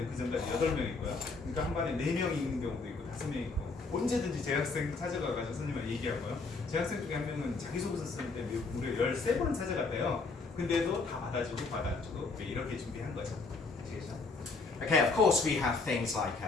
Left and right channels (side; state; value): right; quieter; 4.0 dB